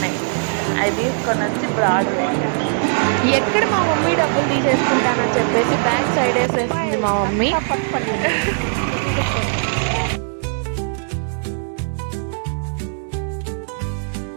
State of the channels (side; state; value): left; silent; digital silence